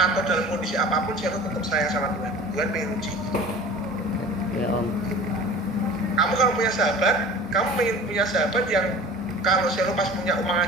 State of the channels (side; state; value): both; normal; correlation 0.41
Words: dalam kondisi apapun Selo tetap sayang sama Tuhan. Tuhan pengen uji. Ya Om. Kamu kalau punya sahabat, kamu pengen punya sahabat yang kalau Selo pas punya uang